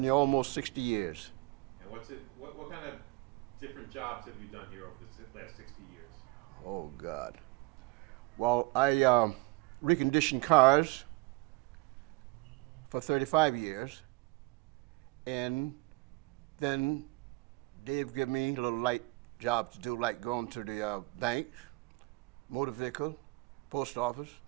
here almost 60 years. And what kind of different jobs have you done here over the last 60 years? Oh, God. Well, I reconditioned cars for 35 years. And then they've given me a little light job to do, like going to the bank, motor vehicle, post office,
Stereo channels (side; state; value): left; quieter; 24.6 dB